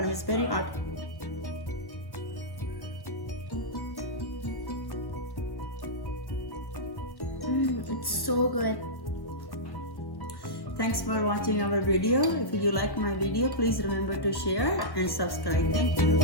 It's very hot. It's so good. Thanks for watching our video. If you like my video, please remember to share and subscribe. Thank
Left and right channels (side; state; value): right; late; 1.1 ms